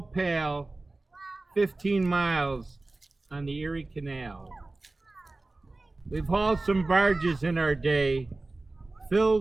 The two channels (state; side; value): quieter; left; 3.1 dB